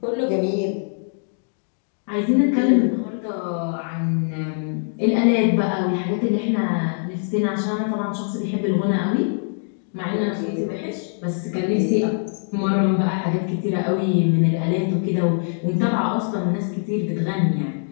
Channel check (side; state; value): right; silent; digital silence